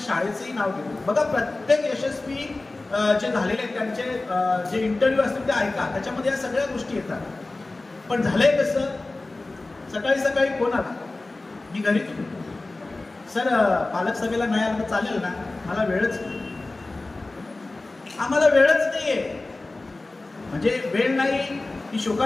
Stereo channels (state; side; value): quieter; right; 3.1 dB